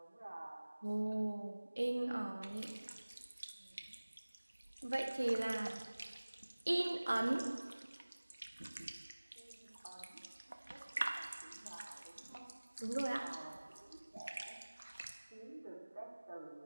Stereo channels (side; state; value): both; inverted; correlation -1.00